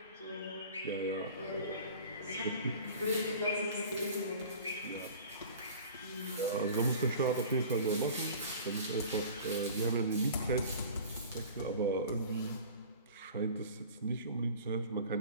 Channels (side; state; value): both; inverted; correlation -0.42